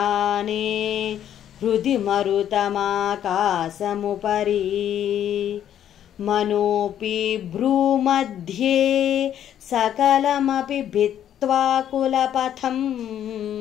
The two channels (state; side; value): quieter; right; 10.4 dB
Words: హృది మరుతమాకాశముపరి మనోపి భ్రూమధ్యే సకలమపి భిత్వా కులపథం